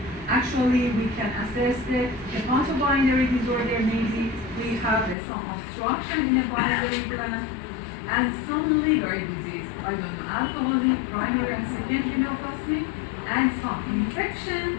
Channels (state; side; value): drops out; right; at 5.2 s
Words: Actually, we can assess the hepatobinary disorder. Maybe we have some obstruction in the biliary gland and some liver disease. I don't know, alcoholic, primary and secondary neoplastic, and some infection